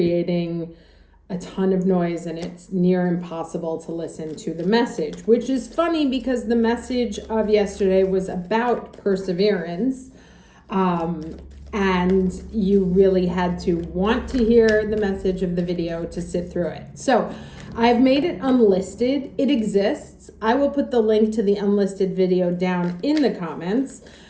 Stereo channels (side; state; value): both; identical; correlation 1.00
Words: a ton of noise, and it's near impossible to listen to the message, which is funny because the message of yesterday was about perseverance. And you really had to want to hear the message of the video to sit through it. So I've made it unlisted. It exists. I will put the link to the unlisted video down in the comments.